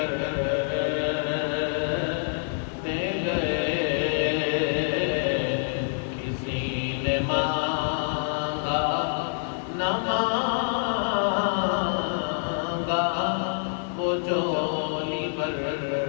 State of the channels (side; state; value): right; silent; digital silence